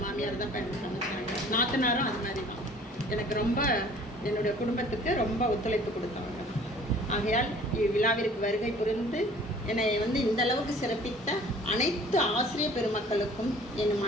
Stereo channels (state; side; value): normal; both; correlation 0.51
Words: மாமியார் தான் எனக்கு அமைச்சாங்க. நாத்தனாரும் அது மாதிரி தான் எனக்கு ரொம்ப என்னுடைய குடும்பத்துக்கு ரொம்ப ஒத்துழைப்பு கொடுத்தாங்க. ஆகையால் இவ்விழாவிற்கு வருகை புரிந்து என்னை வந்து இந்த அளவுக்கு சிறப்பித்த அனைத்து ஆசிரியர் பெருமக்களுக்கும் என்